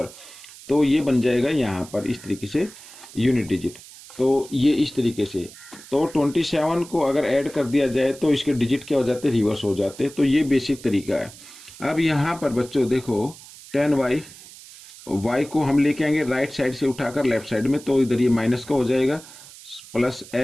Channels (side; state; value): right; noise; hiss, 18 dB below the sound